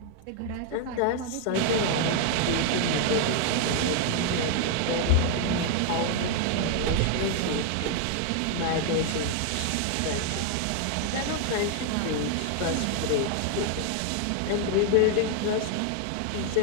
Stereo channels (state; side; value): different; both; correlation 0.00